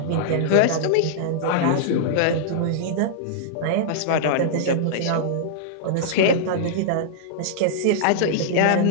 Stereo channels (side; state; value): both; different; correlation -0.01